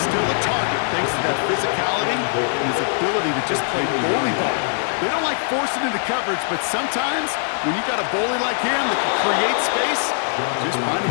still a target thanks to that physicality and his ability to just play bully ball. They don't like forcing into coverage, but sometimes when you got a bully like him that can create space, just find a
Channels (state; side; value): silent; right; digital silence